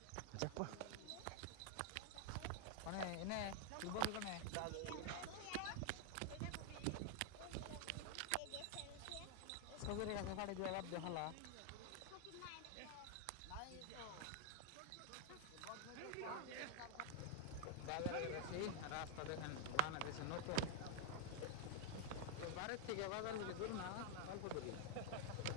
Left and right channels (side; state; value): both; different; correlation 0.00